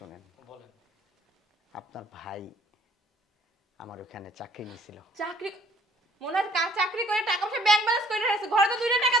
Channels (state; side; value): normal; both; correlation 0.59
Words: বলেন। আপনার ভাই আমার ওখানে চাকরি নিয়েছিল। চাকরি? মনে হয় চাকরি করে টাকা পয়সা ব্যাংক ব্যালেন্স করে রাখছে, ঘরে তো 2 টাকা